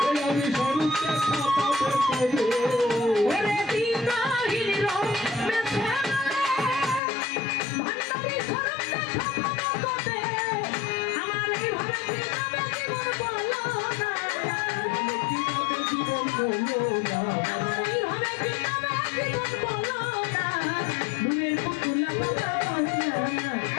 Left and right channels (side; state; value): right; drops out; at 7.0 s